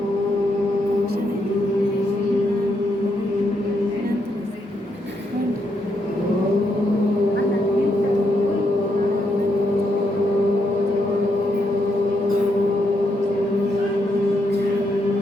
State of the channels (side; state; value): both; normal; correlation 0.79